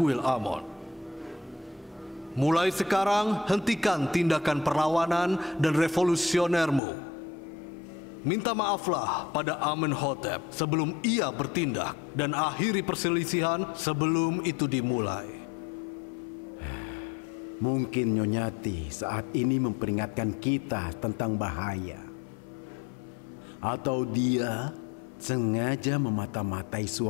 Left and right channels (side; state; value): right; drops out; at 6.8 s